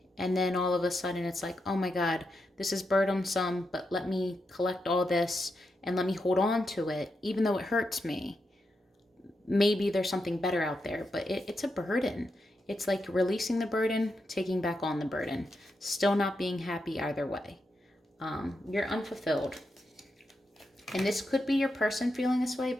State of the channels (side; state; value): both; normal; correlation 0.85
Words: And then all of a sudden it's like, oh my God, this is burdensome, but let me collect all this and let me hold on to it, even though it hurts me. Maybe there's something better out there, but it's a burden. It's like releasing the burden, taking back on the burden, still not being happy either way. You're unfulfilled. And this could be your person feeling this way,